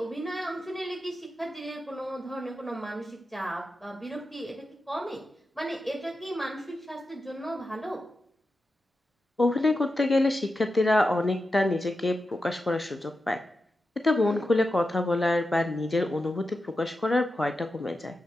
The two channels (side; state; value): both; normal; correlation 0.90